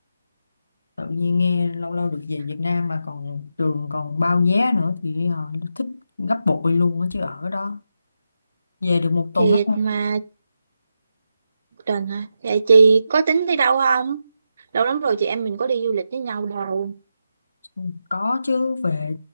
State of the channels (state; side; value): inverted; both; correlation -0.86